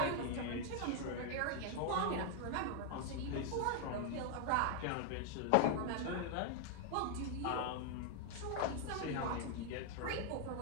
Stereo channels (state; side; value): different; both; correlation 0.00